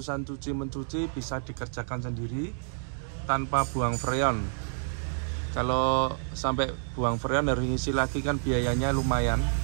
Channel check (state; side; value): silent; left; digital silence